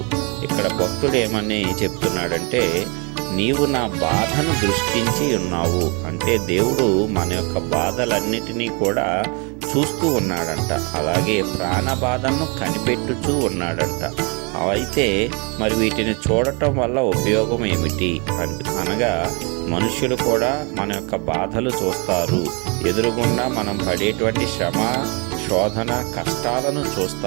ఇక్కడ భక్తుడు ఏమని చెప్తున్నాడంటే, నీవు నా బాధను దృష్టించి ఉన్నావు అంటే దేవుడు మన యొక్క బాధలన్నిటినీ కూడా చూస్తూ ఉన్నాడంట. అలాగే ప్రాణ బాధను కనిపెట్టుచూ ఉన్నాడంట. అయితే మరి వీటిని చూడటం వల్ల ఉపయోగం ఏమిటి అనగా, మనుషులు కూడా మన యొక్క బాధలు చూస్తారు, ఎదురుగుండా మనం పడేటువంటి శ్రమ, శోధన, కష్టాలను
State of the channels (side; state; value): left; quieter; 32.4 dB